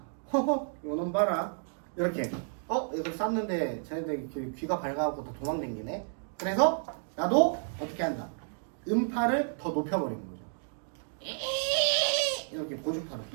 허허, 이놈 봐라. 이렇게. 이걸 쌌는데 쟤네들 귀가 밝아갖고 다 도망댕기네. 그래서 나도 어떻게 한다? 음파를 더 높여버리는 거죠. 이렇게 고주파를.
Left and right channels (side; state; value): left; silent; digital silence